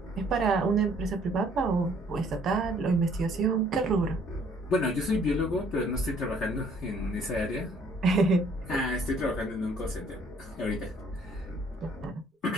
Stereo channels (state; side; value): normal; both; correlation 0.61